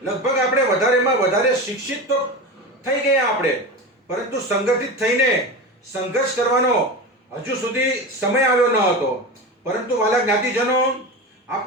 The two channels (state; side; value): normal; both; correlation 0.25